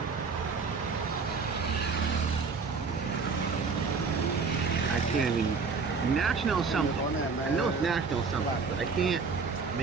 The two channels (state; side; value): quieter; left; 4.9 dB